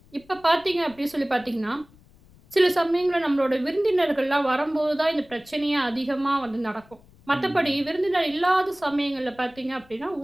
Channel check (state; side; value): noise; left; rumble, 27 dB below the sound